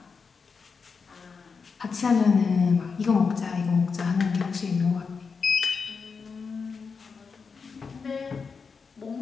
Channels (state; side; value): quieter; right; 5.3 dB